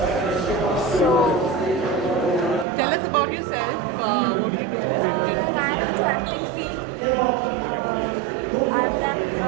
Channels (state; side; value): drops out; left; at 2.7 s